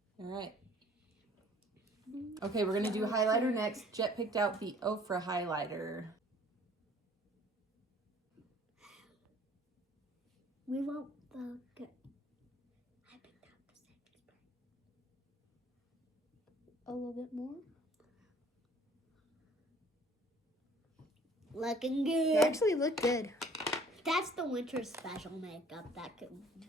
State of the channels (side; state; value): both; normal; correlation 0.55